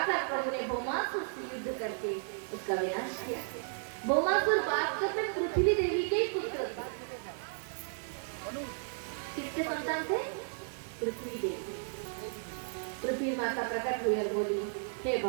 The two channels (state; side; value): silent; left; digital silence